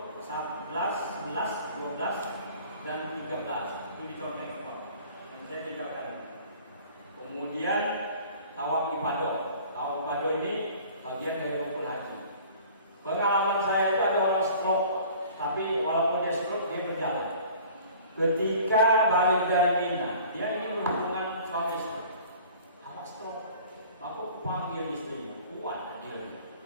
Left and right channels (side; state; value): both; inverted; correlation -0.48